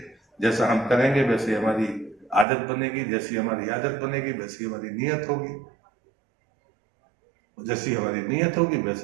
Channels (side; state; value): left; drops out; at 2.5 s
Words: जैसा हम करेंगे वैसे हमारी आदत बनेगी, जैसी हमारी आदत बनेगी वैसी हमारी नीयत होगी, जैसी हमारी नीयत होगी